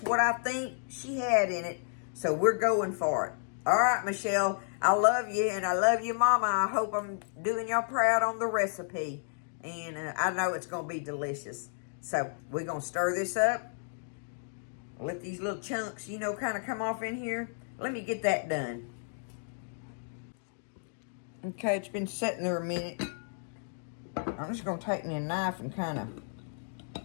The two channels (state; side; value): silent; right; digital silence